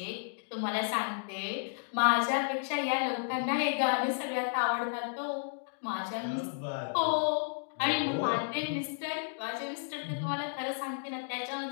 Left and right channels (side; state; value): right; silent; digital silence